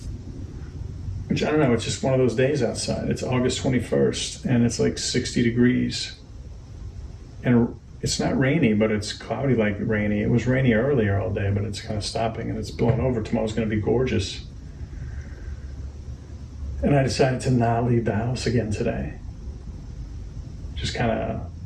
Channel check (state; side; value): identical; both; correlation 1.00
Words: Which, I don't know, it's just one of those days outside. It's August 21st, and it's like 60 degrees. And it's not rainy, but it's cloudy like rainy. It was rainy earlier all day, but it's kind of stopping, and it's blowing over. Tomorrow's going to be gorgeous. And I decided to not leave the house again today. Just kind of,